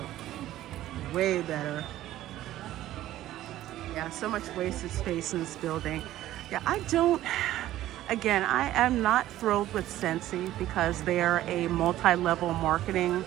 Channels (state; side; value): quieter; left; 14.1 dB